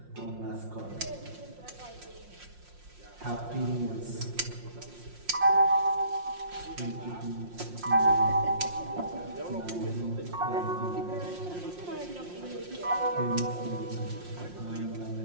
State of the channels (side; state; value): left; late; 5.6 ms